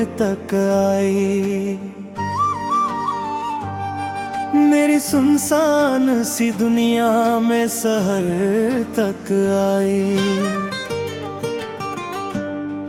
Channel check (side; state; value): both; identical; correlation 1.00